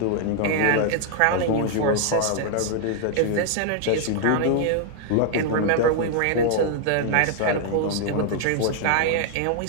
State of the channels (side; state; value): both; different; correlation 0.00